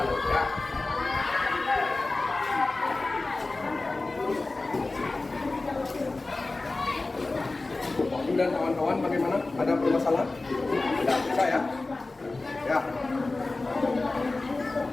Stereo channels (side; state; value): right; quieter; 3.3 dB